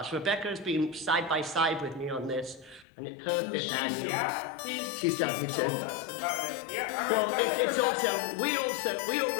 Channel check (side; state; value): right; drops out; at 2.9 s